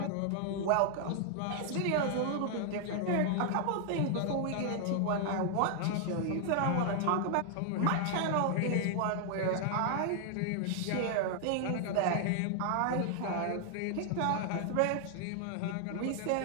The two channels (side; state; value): both; different; correlation 0.00